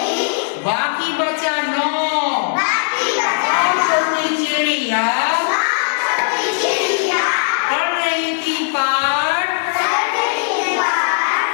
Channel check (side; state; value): right; silent; digital silence